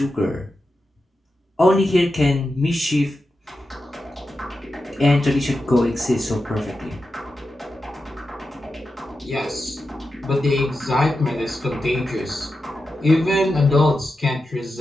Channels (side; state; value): both; normal; correlation 0.90